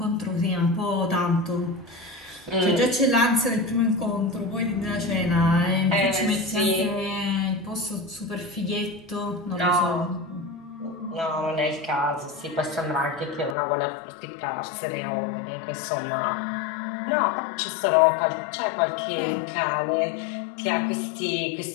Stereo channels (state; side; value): drops out; right; at 13.6 s